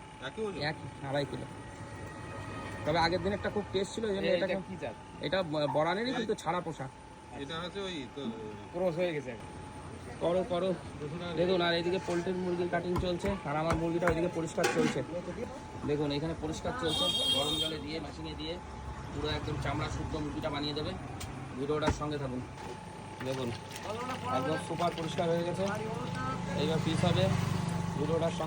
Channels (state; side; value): identical; both; correlation 1.00